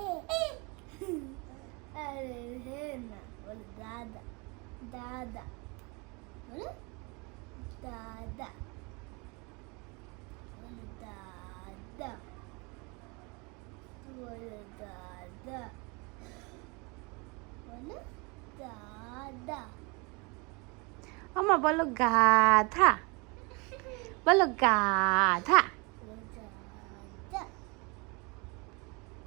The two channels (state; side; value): quieter; left; 29.1 dB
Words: আরে হে না, বলো দাদা, দাদা, বলো দাদা, বলো দাদা, বলো দাদা, বলো দাদা। আমা বলো গাধা, বলো গাধা।